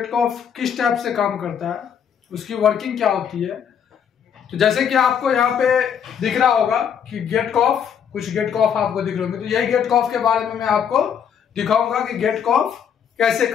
कॉफ किस टाइप से काम करता है, उसकी वर्किंग क्या होती है। तो जैसे कि आपको यहाँ पे दिख रहा होगा कि गेट कॉफ, कुछ गेट कॉफ आपको दिख रहे होंगे, तो यही गेट कॉफ के बारे में मैं आपको दिखाऊंगा कि गेट कॉफ कैसे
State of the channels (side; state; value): right; quieter; 7.9 dB